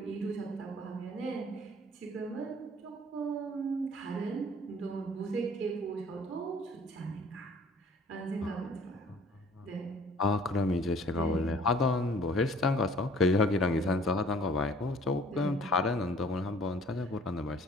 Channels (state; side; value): normal; both; correlation 0.53